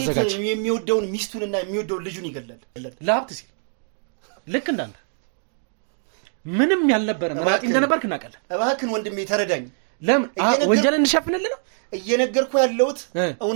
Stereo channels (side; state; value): left; silent; 56 dB below the other